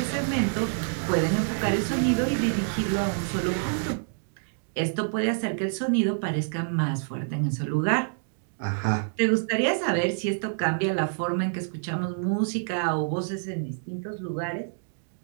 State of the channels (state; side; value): silent; left; digital silence